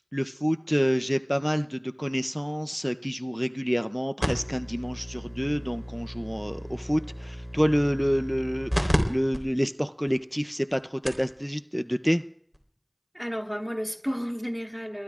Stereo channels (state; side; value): identical; both; correlation 1.00